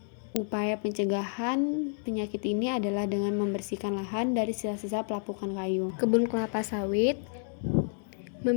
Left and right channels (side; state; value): right; silent; digital silence